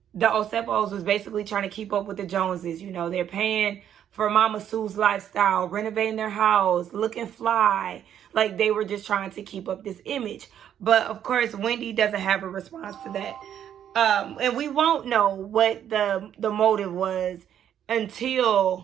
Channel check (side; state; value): left; quieter; 9.8 dB